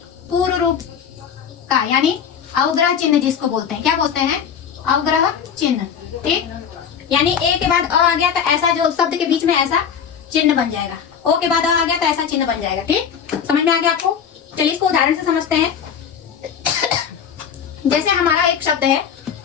पूर्व रूप का, यानी अवग्रह चिन्ह जिसको बोलते हैं, क्या बोलते हैं, अवग्रह चिन्ह, ठीक। यानी ए के बाद अ आ गया तो ऐसा जो शब्द के बीच में ऐसा चिन्ह बन जाएगा, ओ के बाद अ आ गया तो ऐसा चिन्ह बन जाएगा, ठीक। समझ में आ गया आपको। चलिए इसको उदाहरण से समझते हैं। जैसे हमारा एक शब्द है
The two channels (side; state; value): right; quieter; 7.6 dB